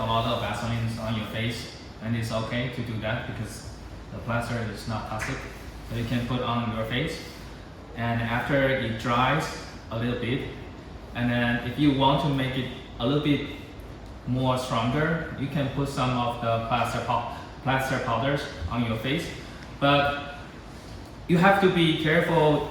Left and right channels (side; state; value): both; identical; correlation 1.00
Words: lot of Vaseline on your face, and it's okay to do that because the plaster is not toxic. So you can put on your face, and after it dries a little bit, and then if you want to make it a little bit more stronger, you can put some of the plaster powders on your face. But you have to be careful,